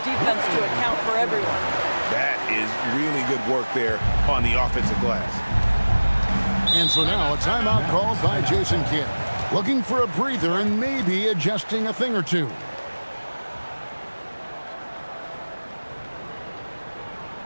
defense to account for everyone. That is really good work there on the offensive glass. And so now a timeout called by Jason Kidd. Looking for a breather and maybe adjusting a thing or two. All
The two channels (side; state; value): both; inverted; correlation -1.00